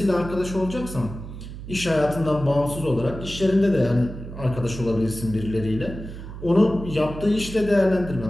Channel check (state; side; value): noise; right; hum, 11 dB below the sound